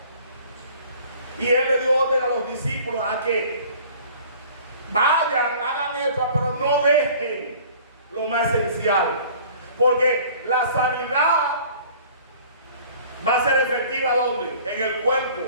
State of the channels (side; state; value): both; inverted; correlation -0.49